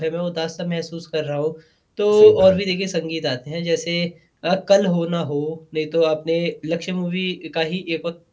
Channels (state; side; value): identical; both; correlation 1.00